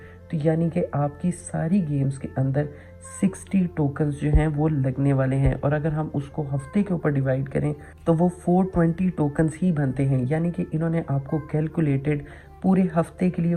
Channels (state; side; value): identical; both; correlation 1.00